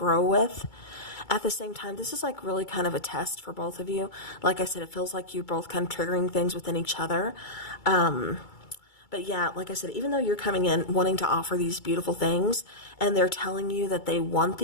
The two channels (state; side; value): late; right; 2.3 ms